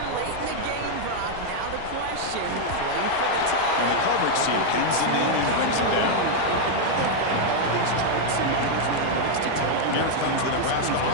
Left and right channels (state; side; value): different; both; correlation 0.00